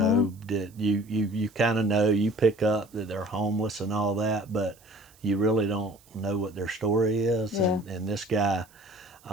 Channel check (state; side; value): noise; right; hiss, 28 dB below the sound